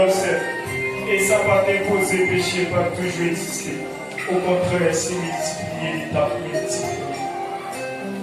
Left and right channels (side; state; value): both; identical; correlation 1.00